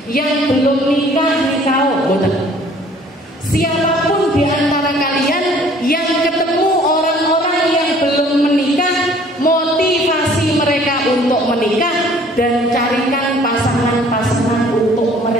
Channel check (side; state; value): both; normal; correlation 0.55